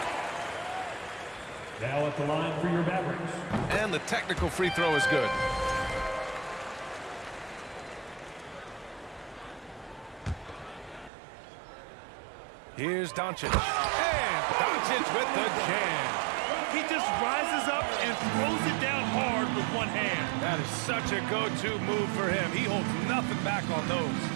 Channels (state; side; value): drops out; left; at 11.1 s